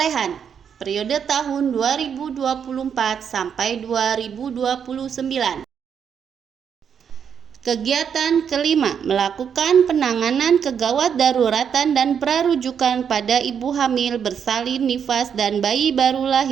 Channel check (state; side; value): quieter; left; 7.6 dB